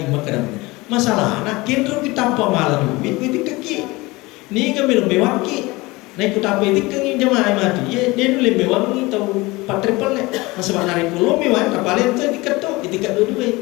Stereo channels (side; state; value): right; quieter; 22.3 dB